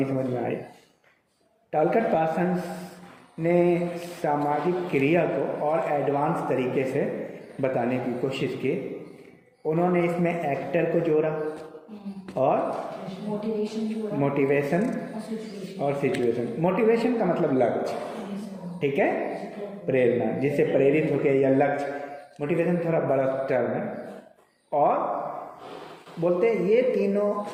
समझ में आई। टॉलकट पार्सन ने सामाजिक क्रिया को और एडवांस तरीके से बताने की कोशिश की। उन्होंने इसमें एक्टर को जोड़ा और मोटिवेशन और सिचुएशन। मोटिवेशन का मतलब लक्ष्य, ठीक है, प्रेरणा, जिससे प्रेरित होकर, या लक्ष्य, मोटिवेशन थोड़ा बड़ा टर्म है। और बोलते हैं ये तीनों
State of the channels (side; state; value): both; identical; correlation 1.00